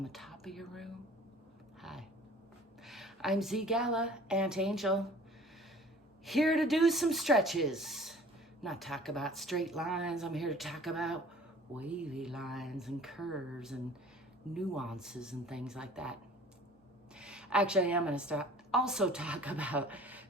the top of your room? Hi, I'm ZGALA, Aunt Angel, here to do some stretches. Not talk about straight lines, I'm here to talk about wavy lines and curves and nuances and things like that. Actually, I'm going to also talk about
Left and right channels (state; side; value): normal; both; correlation 0.48